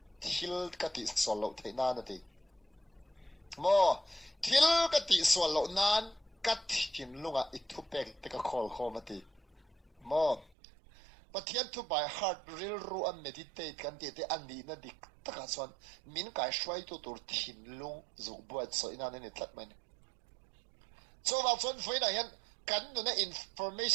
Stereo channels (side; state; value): left; drops out; at 10.5 s